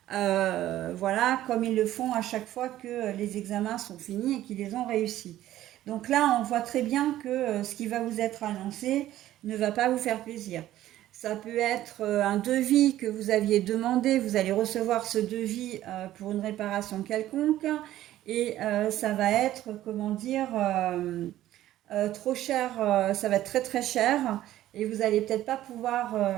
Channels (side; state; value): left; quieter; 13.8 dB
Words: voilà, comme ils le font à chaque fois que les examens sont finis et qu'ils les ont réussis. Donc là, on voit très bien que ce qui va vous être annoncé ne va pas vous faire plaisir. Ça peut être un devis que vous aviez demandé, vous allez recevoir ce devis pour une réparation quelconque, et ça va être, comment dire, trop cher, ça va être très très cher, et vous allez peut-être pas pouvoir,